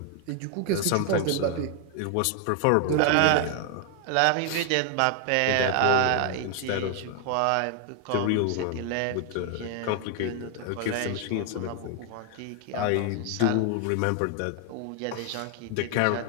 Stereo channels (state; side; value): different; both; correlation 0.00